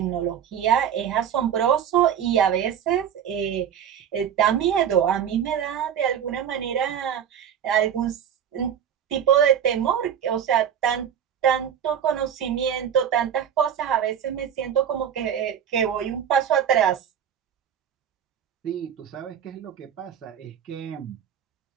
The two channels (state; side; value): quieter; left; 8.9 dB